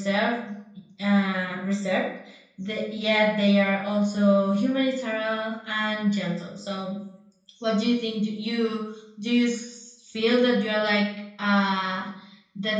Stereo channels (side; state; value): both; identical; correlation 1.00